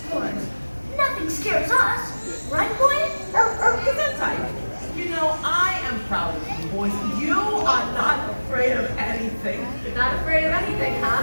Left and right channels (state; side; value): inverted; both; correlation -1.00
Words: Nothing scares us. Right, boy? Gesundheit. You know, I am proud of you, boys. You are not afraid of anything. Not afraid of anything,